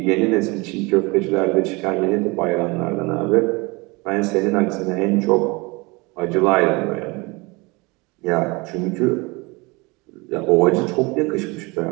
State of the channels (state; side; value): quieter; left; 25.8 dB